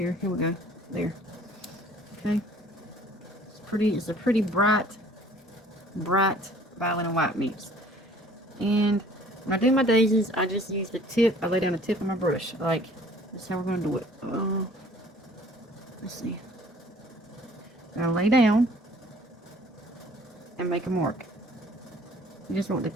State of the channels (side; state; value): both; normal; correlation 0.54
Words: Here we go. There. Okay. It's a pretty bright violet and white mix. And When I do my daisies, I just use the tip. I lay down the tip of my brush. Like, that's how we're going to do it. Let's see. I'll lay down and make a mark. You just want the